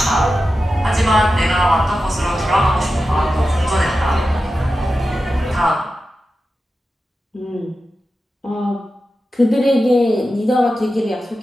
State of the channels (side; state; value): both; normal; correlation 0.92